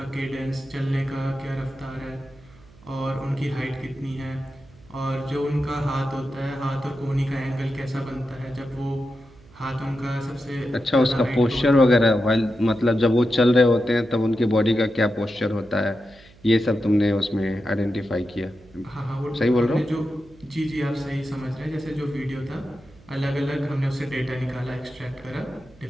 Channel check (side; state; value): right; noise; hum, 25 dB below the sound